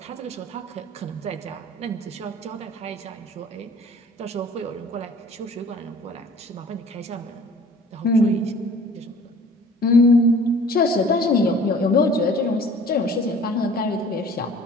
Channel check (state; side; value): normal; both; correlation 0.49